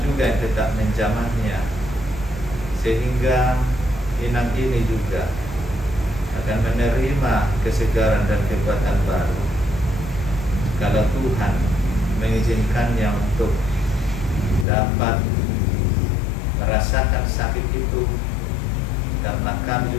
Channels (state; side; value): drops out; right; at 14.7 s